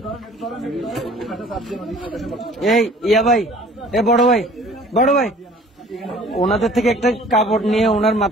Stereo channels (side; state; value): both; normal; correlation 0.51